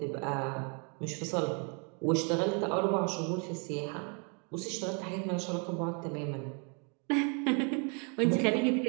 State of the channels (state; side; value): quieter; left; 36.4 dB